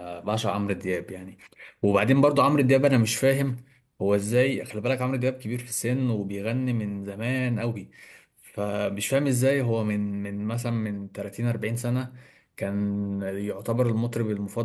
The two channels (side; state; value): both; identical; correlation 1.00